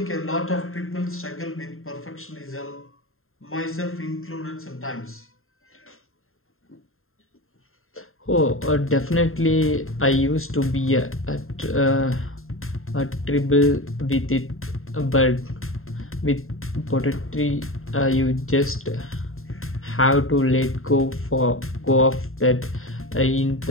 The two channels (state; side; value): late; right; 0.61 ms